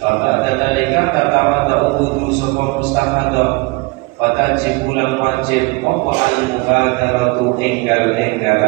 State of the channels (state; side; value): quieter; left; 25.4 dB